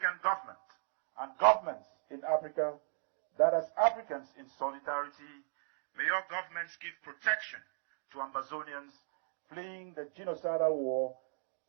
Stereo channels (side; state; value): left; silent; digital silence